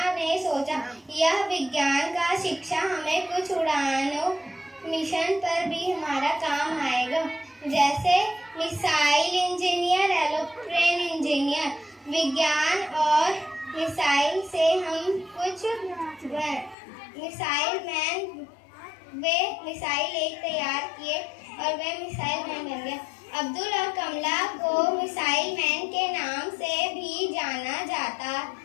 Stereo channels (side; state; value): right; drops out; at 16.8 s